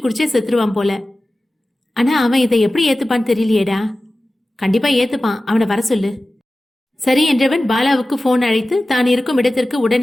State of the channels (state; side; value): normal; both; correlation 0.95